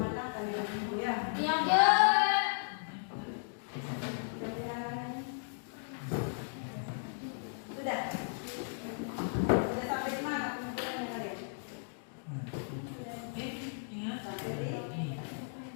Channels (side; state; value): right; silent; digital silence